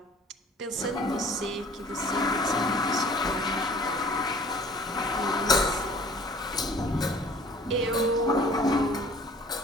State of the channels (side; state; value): both; normal; correlation 0.50